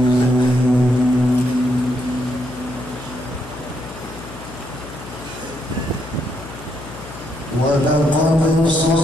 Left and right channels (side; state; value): left; noise; hum, 14 dB below the sound